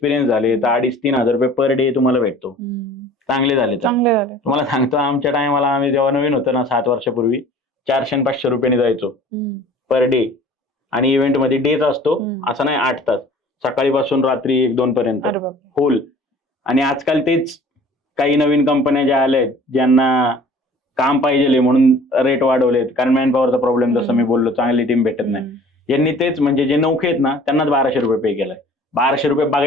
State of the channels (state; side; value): normal; both; correlation 0.48